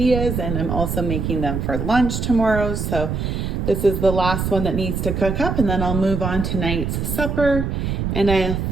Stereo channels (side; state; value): right; noise; rumble, 2 dB below the sound